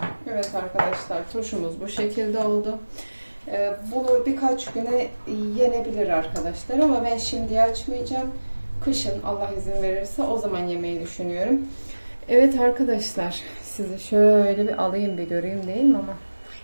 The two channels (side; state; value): both; inverted; correlation -1.00